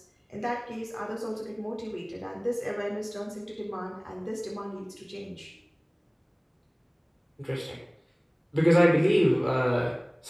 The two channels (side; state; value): both; identical; correlation 1.00